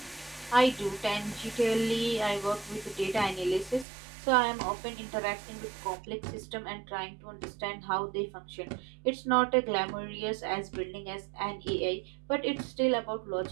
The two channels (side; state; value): left; drops out; at 3.9 s